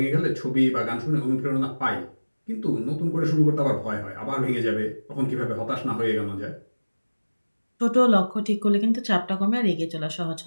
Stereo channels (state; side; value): inverted; both; correlation -1.00